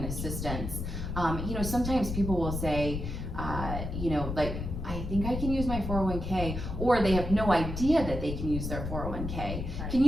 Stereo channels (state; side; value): noise; left; rumble, 4 dB below the sound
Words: assistance, you know, sometimes people will say, you know, like, I think I can use my 401k, or they have no idea that they can use their 401k. Right. Can